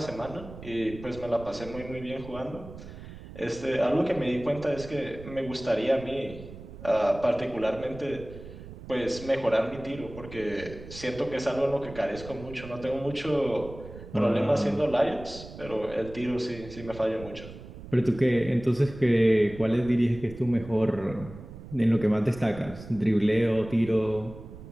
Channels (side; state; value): right; noise; rumble, 14 dB below the sound